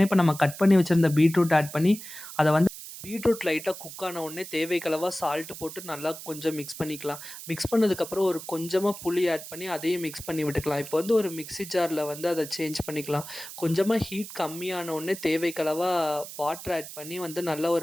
இப்ப நம்ம கட் பண்ணி வச்சிருந்த பீட்ரூட் ஆட் பண்ணி, அத வந்து பீட்ரூட் லைட்டா குக் ஆன உடனே தேவைக்கு அளவா சால்ட் போட்டு நல்லா கொஞ்சம் மிக்ஸ் பண்ணிக்கலாம். மிக்ஸ் பண்ணதுக்கப்புறம் ஒரு கொஞ்சமா புளி ஆட் பண்ணி அதையும் மிக்ஸ் பண்ணி விட்டுக்கலாம். இப்போ வந்து ஒரு மிக்ஸி ஜார்ல வந்து அத சேஞ்ச் பண்ணிக்கலாம். கொஞ்சமா ஹீட் கம்மியான உடனே தேவைக்கு அளவா வாட்டர் ஆட் பண்ணி வந்து நல்ல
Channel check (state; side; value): noise; right; hiss, 12 dB below the sound